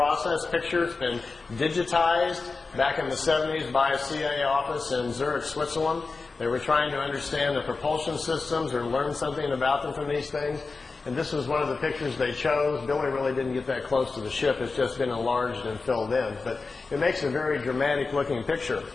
picture. It's been digitized back in the 70s by a CIA office in Zurich, Switzerland. They were trying to understand the propulsion systems or learn something about them from these things. And this was one of the pictures they chose. Billy really didn't get that close to the ship. It's just been enlarged and filled in. But it makes a very dramatic-looking picture.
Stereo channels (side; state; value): right; quieter; 4.1 dB